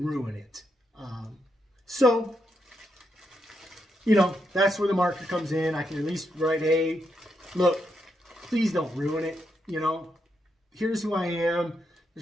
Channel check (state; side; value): normal; both; correlation 0.81